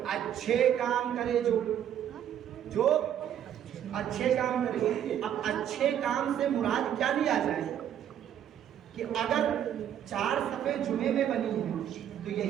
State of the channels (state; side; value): quieter; left; 10.1 dB